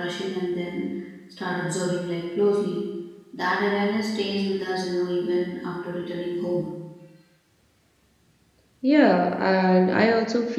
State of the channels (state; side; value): identical; both; correlation 1.00